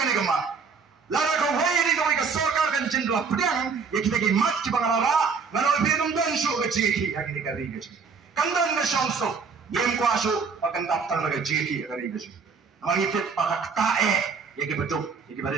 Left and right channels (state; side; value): quieter; left; 5.4 dB